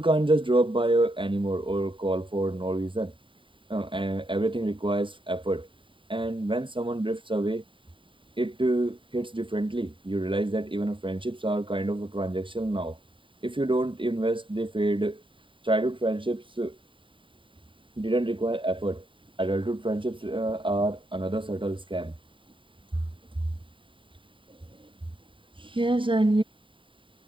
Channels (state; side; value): late; left; 0.25 ms